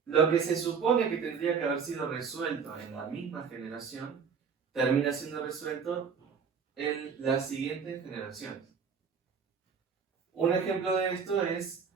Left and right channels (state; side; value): quieter; left; 6.2 dB